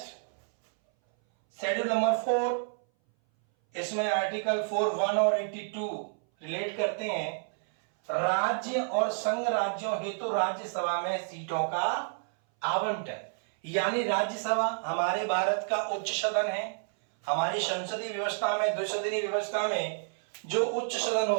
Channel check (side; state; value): left; silent; 58 dB below the other